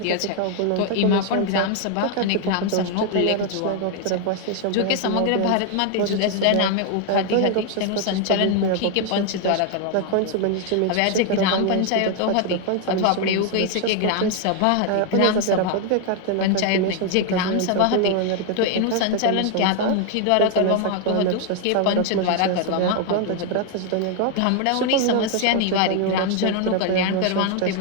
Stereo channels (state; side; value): different; both; correlation 0.00